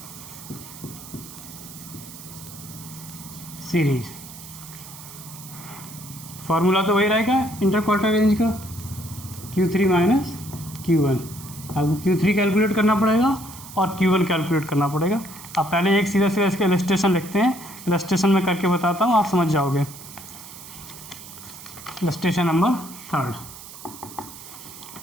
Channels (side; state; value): right; noise; hiss, 15 dB below the sound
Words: series. Formula तो वही रहेगा इंटरक्वार्टाइल रेंज का, Q3 माइनस Q1। आपको Q3 कैलकुलेट करना पड़ेगा और Q1 कैलकुलेट करना पड़ेगा। आप पहले एक सीधा सीधा इसका इलस्ट्रेशन लिखते हैं, इलस्ट्रेशन में करके बताता हूँ, आप समझ जाओगे। इलस्ट्रेशन नंबर 3